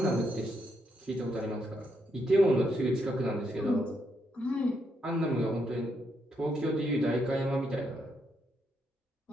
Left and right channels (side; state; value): both; normal; correlation 0.78